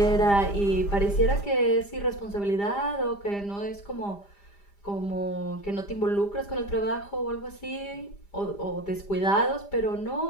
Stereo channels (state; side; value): late; right; 5.0 ms